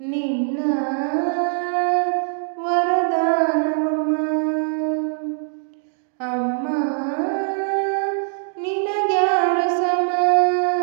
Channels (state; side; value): silent; left; digital silence